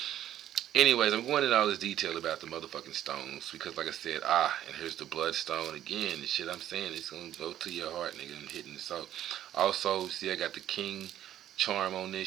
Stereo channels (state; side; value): quieter; left; 11.7 dB